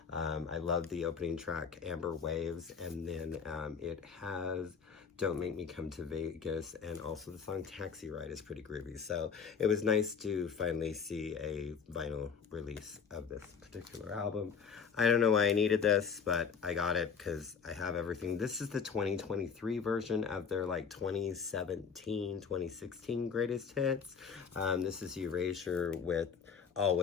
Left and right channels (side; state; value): right; quieter; 6.3 dB